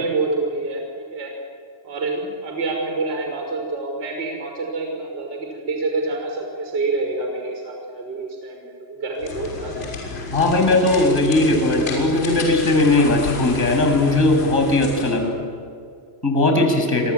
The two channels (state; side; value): late; left; 3.0 ms